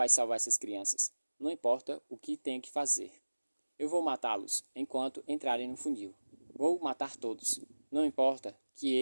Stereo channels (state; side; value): inverted; both; correlation -1.00